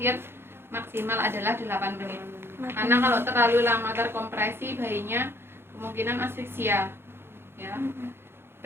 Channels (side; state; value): left; late; 0.11 ms